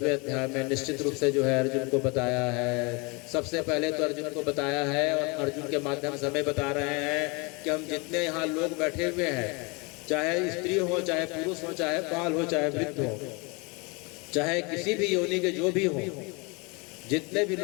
अध्याय में निश्चित रूप से जो है अर्जुन को बताया है। सबसे पहले तो अर्जुन को बताया है और अर्जुन के माध्यम से हमें बता रहे हैं कि हम जितने यहाँ लोग बैठे हुए हैं, चाहे स्त्री हो, चाहे पुरुष हो, चाहे बाल हो, चाहे वृद्ध हो, चाहे किसी भी योनि के जो भी हो, जितने भी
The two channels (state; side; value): quieter; right; 29.0 dB